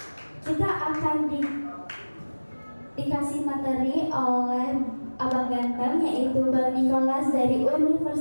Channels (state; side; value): inverted; both; correlation -1.00